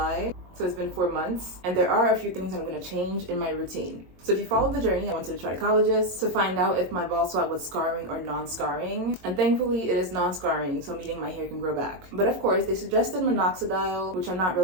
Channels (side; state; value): left; late; 22 ms